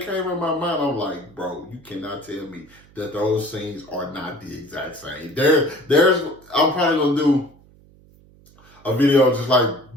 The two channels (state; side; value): noise; right; hum, 27 dB below the sound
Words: came in my mind. I'm like, bro, you cannot tell me that those scenes are not the exact same. I'm probably gonna do a video just like